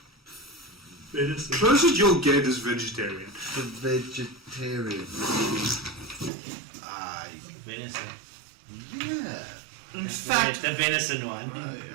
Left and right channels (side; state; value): left; drops out; at 6.3 s